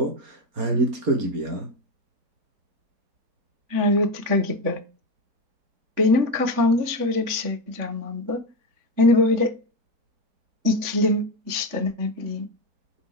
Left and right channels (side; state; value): left; late; 3.6 ms